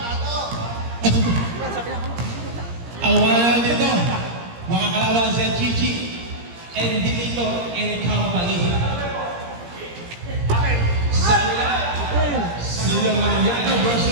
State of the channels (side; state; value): left; late; 17 ms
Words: Ang mga dito, mga kalaban si Chichi and Dilito and Company. Silang Mariano